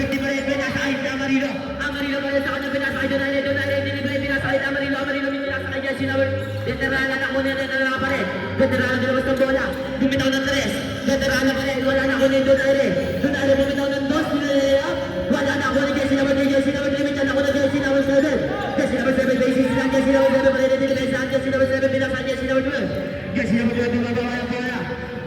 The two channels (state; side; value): identical; both; correlation 1.00